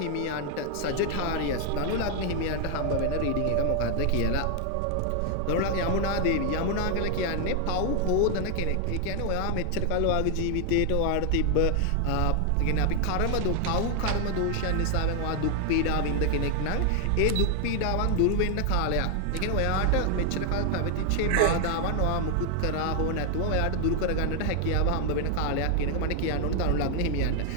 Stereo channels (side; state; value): both; different; correlation 0.00